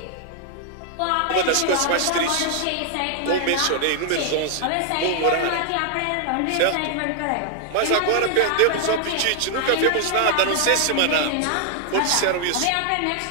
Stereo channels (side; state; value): both; different; correlation 0.00